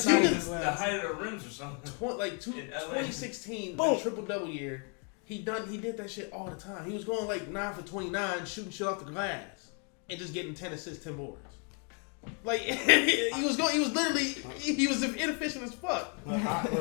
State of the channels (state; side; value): quieter; right; 38.2 dB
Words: of the height of the rims or something. 2016, the triple-double year, he did that shit all the time. He was going like 9 for 29, shooting shit off the glass, and just getting 10 assists, 10 boards. Like he was inefficient as fuck. But